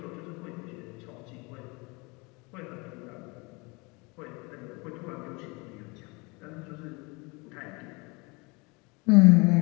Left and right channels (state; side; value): quieter; right; 27.6 dB